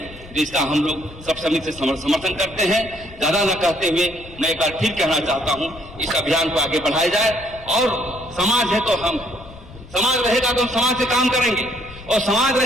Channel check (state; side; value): noise; left; rumble, 18 dB below the sound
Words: तो इसका हम लोग सब समिति से समर्थन करते हैं। ज्यादा न कहते हुए मैं एक बार फिर कहना चाहता हूं, इस अभियान को आगे बढ़ाया जाए, और समाज है तो हम, समाज रहेगा तो हम समाज से काम करेंगे, और समाज